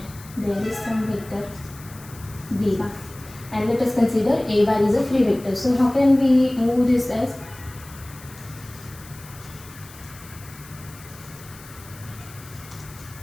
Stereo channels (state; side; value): noise; left; hiss, 19 dB below the sound